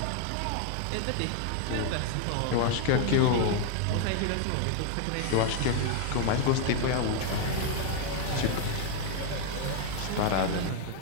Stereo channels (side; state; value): both; different; correlation 0.00